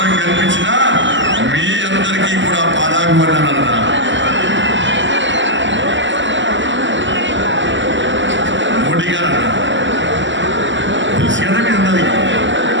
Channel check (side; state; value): left; late; 0.54 ms